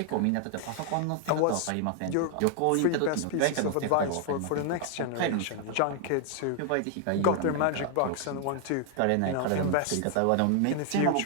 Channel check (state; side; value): different; both; correlation 0.00